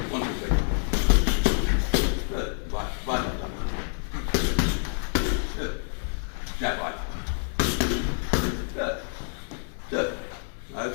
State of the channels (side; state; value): right; silent; 60 dB below the other